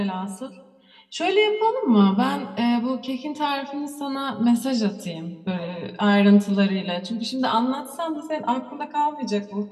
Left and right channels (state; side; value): identical; both; correlation 1.00